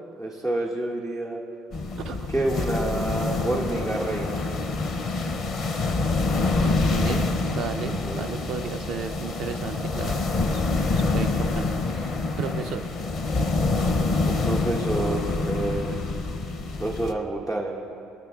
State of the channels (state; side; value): normal; both; correlation 0.72